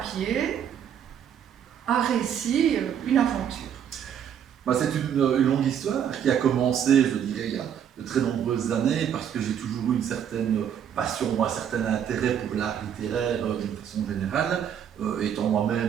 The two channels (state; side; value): quieter; left; 8.9 dB